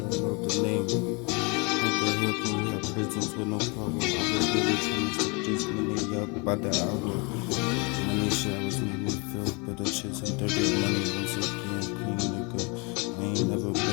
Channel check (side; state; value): right; quieter; 30.6 dB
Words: know the name. How the hell can we have prisons with no power? I was really trying to step this money up by the hour. Money showers make me feel better, chasing dirty money once again, clean nigga. I ain't never been